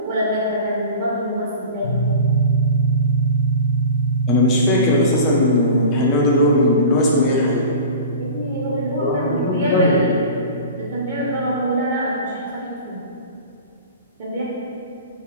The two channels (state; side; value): inverted; both; correlation -0.37